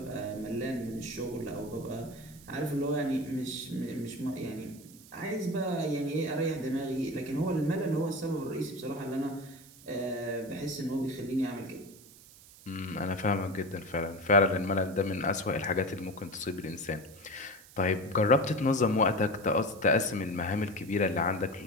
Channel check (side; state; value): right; noise; hiss, 21 dB below the sound